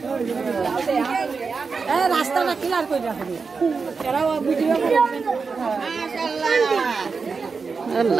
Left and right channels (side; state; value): left; quieter; 4.9 dB